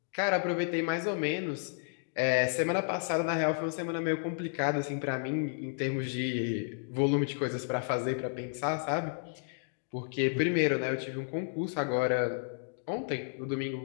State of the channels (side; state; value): right; silent; digital silence